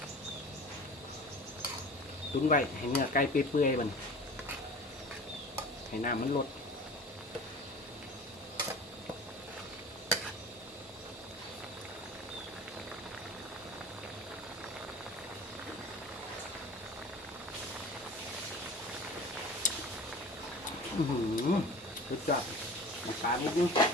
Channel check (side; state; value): both; normal; correlation 0.39